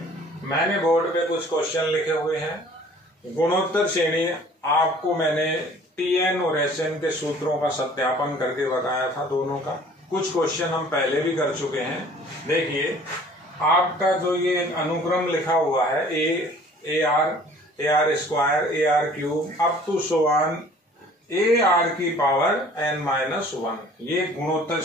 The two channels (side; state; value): both; normal; correlation 0.51